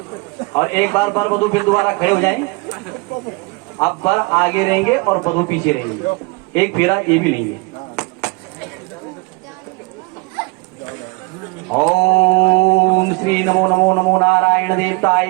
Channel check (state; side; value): quieter; left; 26.5 dB